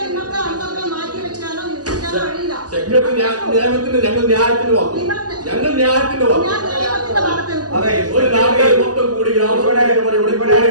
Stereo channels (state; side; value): late; left; 0.68 ms